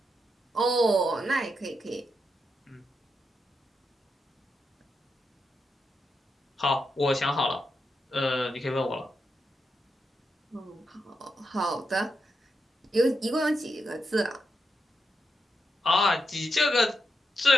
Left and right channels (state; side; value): normal; both; correlation 0.84